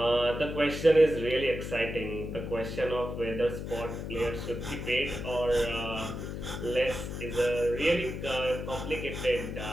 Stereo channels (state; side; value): noise; left; hum, 6 dB below the sound